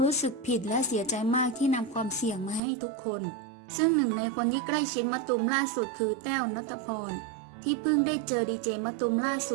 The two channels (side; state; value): left; drops out; at 2.6 s